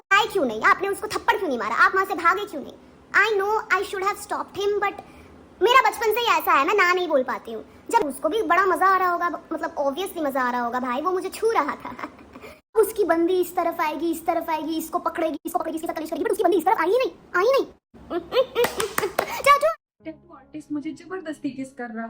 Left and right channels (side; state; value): both; identical; correlation 1.00